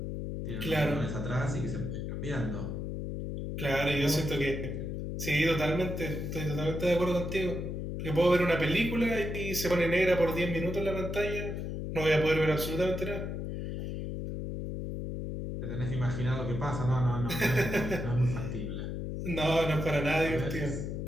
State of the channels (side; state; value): left; noise; hum, 4 dB below the sound